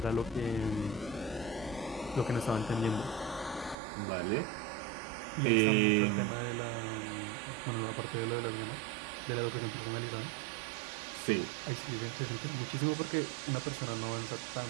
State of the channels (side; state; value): left; drops out; at 3.8 s